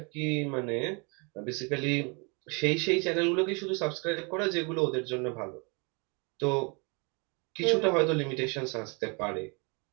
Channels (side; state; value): left; quieter; 31.9 dB